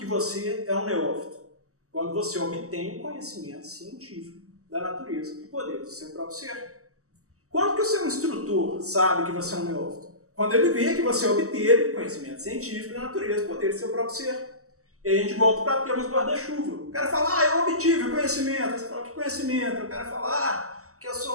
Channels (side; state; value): left; late; 0.65 ms